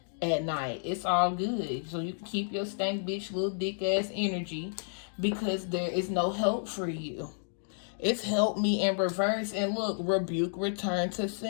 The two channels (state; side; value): silent; right; digital silence